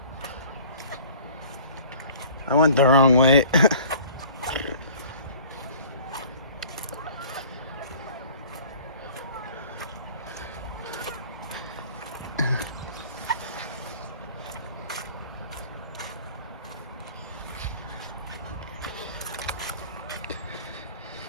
I went the wrong way.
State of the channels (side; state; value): both; inverted; correlation -0.48